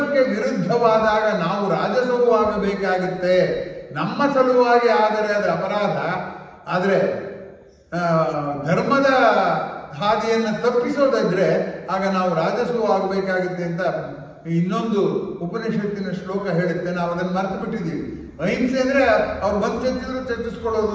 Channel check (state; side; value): identical; both; correlation 1.00